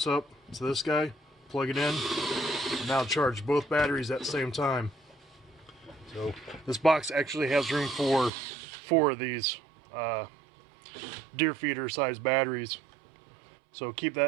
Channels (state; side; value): drops out; left; at 8.3 s